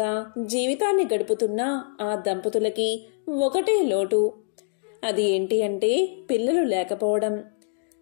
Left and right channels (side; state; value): right; silent; digital silence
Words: జీవితాన్ని గడుపుతున్న ఆ దంపతులకి ఒకటే లోటు. అది ఏంటి అంటే పిల్లలు లేకపోవడం.